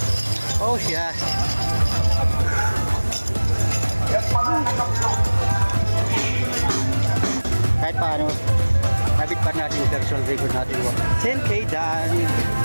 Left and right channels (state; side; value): inverted; both; correlation -1.00